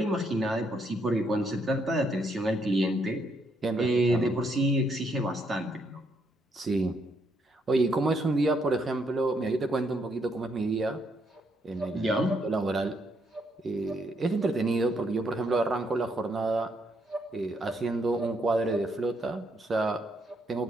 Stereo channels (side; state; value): both; normal; correlation 0.74